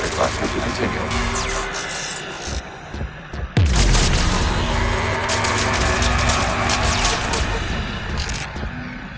cluster to continue.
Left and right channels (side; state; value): both; identical; correlation 1.00